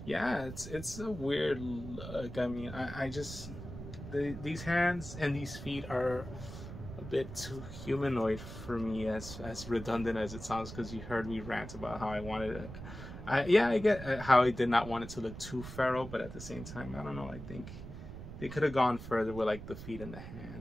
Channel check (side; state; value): right; noise; rumble, 11 dB below the sound